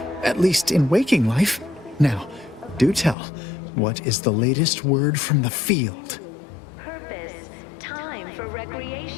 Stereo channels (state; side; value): drops out; right; at 3.2 s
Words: At least in waking life. Now, do tell, what is the latest word from the field? Purpose, time for